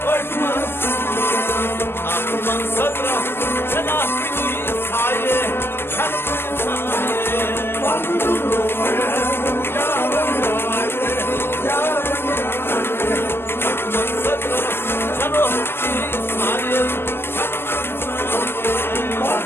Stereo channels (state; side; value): late; right; 0.11 ms